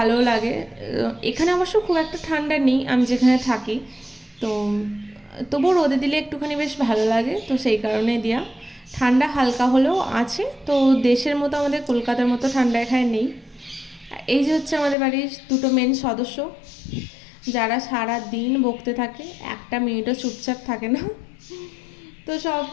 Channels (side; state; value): right; drops out; at 15.0 s